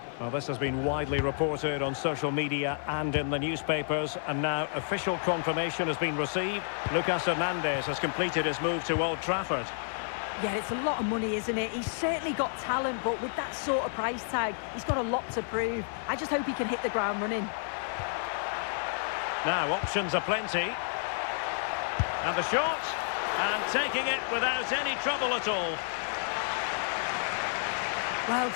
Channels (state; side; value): silent; right; 58 dB below the other